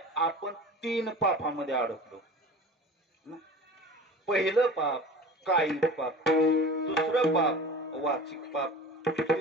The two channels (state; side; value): normal; both; correlation 0.37